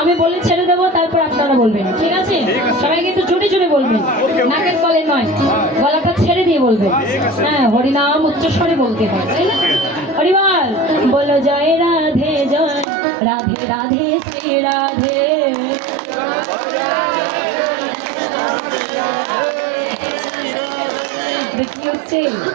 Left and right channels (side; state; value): left; drops out; at 12.9 s